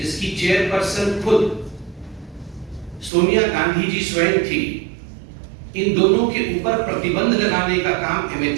चेयरपर्सन खुद सोनिया गांधी जी स्वयं थी, इन दोनों के ऊपर प्रतिबंध लगाने का काम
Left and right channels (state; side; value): drops out; left; at 3.1 s